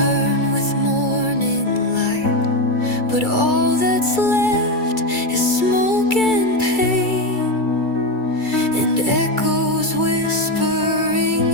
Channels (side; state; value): right; late; 2.3 ms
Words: with morning light. But all that's left is smoke and pain, and echoes whispering